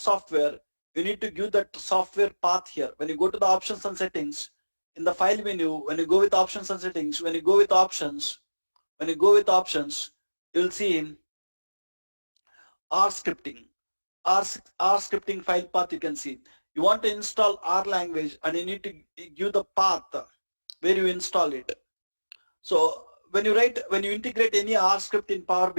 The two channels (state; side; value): inverted; both; correlation -1.00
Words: you need to give that software path here. When you go to the options and settings, in the file menu, when you go with options and settings, when you go with options, you'll see R scripting. R scripting file path you can see. You want to install R language and you need to give the path where you install it. So when you integrate any R script in Power